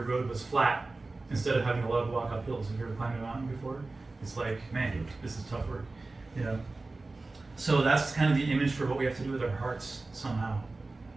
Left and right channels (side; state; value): left; quieter; 3.4 dB